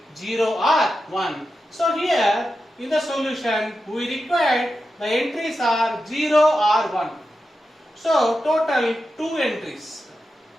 0 or 1. So here in the solution we required the entries are 0 or 1. So total 2 entries.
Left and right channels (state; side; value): normal; both; correlation 0.90